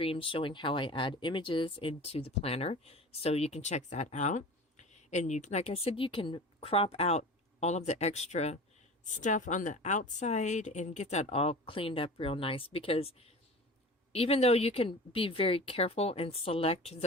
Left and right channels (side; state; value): both; normal; correlation 0.36